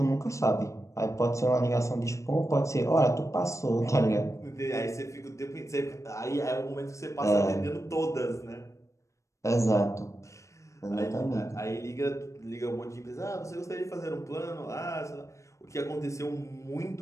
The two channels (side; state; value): right; late; 0.15 ms